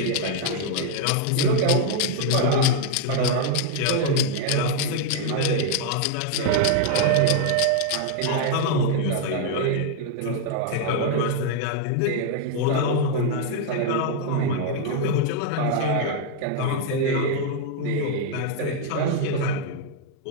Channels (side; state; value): both; different; correlation 0.00